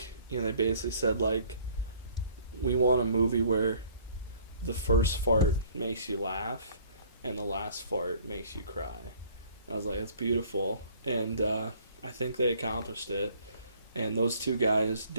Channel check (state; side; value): inverted; both; correlation -0.56